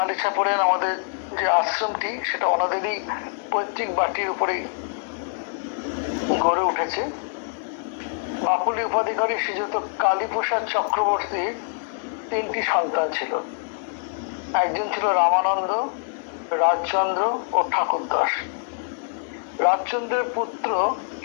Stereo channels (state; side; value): silent; right; 62 dB below the other